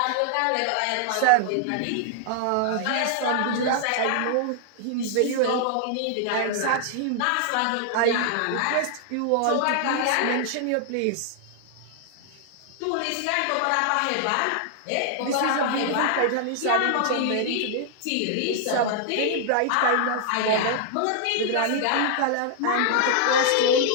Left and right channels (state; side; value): different; both; correlation -0.01